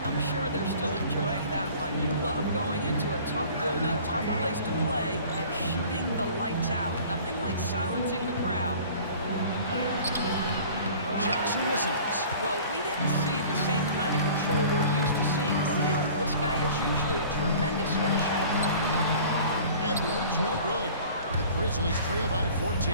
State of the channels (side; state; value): both; inverted; correlation -0.46